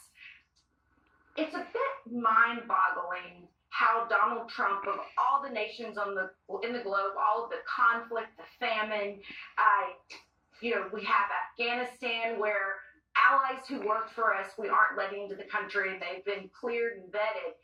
It's a bit mind-boggling how Donald Trump, of all the nations in the globe, all of the conflict, the famine, we have Afghanistan where allies who work for us, we aren't letting into the country. They've been cleared and vetted.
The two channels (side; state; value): both; identical; correlation 1.00